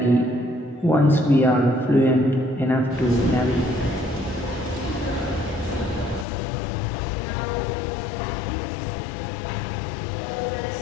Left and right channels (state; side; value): drops out; right; at 6.2 s